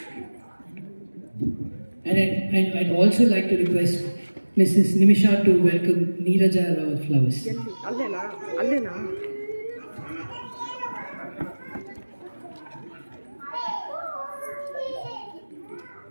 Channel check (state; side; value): inverted; both; correlation -1.00